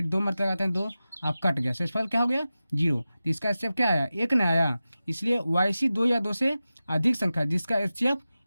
2 मारते लगाते हैं 2, अब कट गया, शेषफल क्या हो गया? 0। तो इसका HCF क्या आया? 1 नहीं आया। इसलिए वैसी 2 या 2 से अधिक संख्या जिसका HCF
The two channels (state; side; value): inverted; both; correlation -0.94